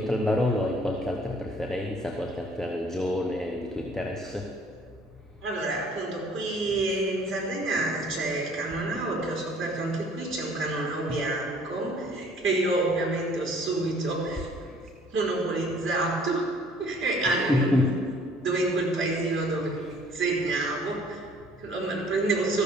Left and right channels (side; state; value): both; normal; correlation 0.56